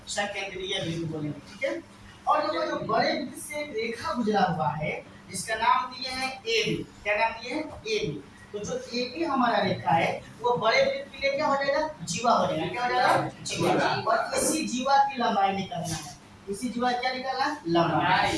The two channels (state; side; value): identical; both; correlation 1.00